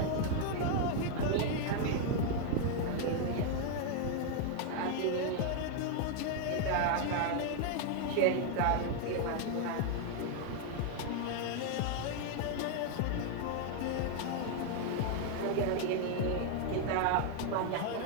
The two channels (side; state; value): both; different; correlation 0.00